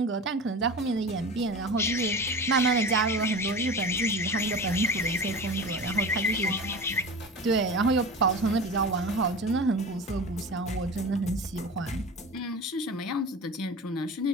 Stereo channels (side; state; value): both; normal; correlation 0.32